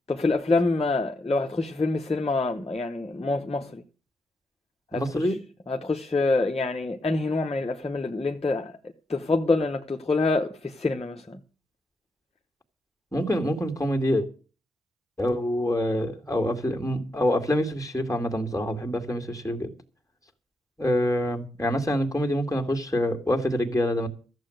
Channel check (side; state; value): both; normal; correlation 0.82